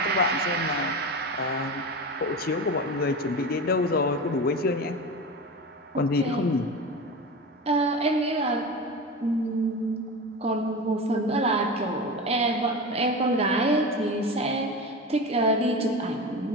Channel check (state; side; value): normal; both; correlation 0.26